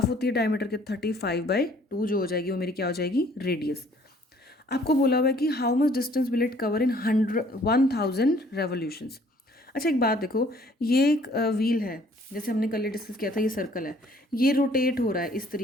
होती है डायमीटर के, 35/2 जो हो जाएगी वो मेरी क्या हो जाएगी, रेडियस। आपको बोला हुआ है कि how much distance will it cover in 1000 revolutions. अच्छा एक बात देखो, ये एक व्हील है, जैसे हमने कल डिस्कस किया था, ये सर्कल है, ये रोटेट हो रहा है इस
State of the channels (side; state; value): both; normal; correlation 0.59